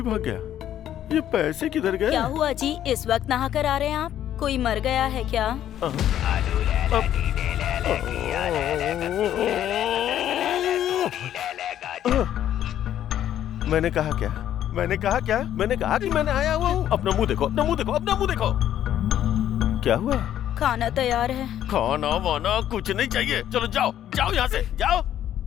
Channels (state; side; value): quieter; right; 11.2 dB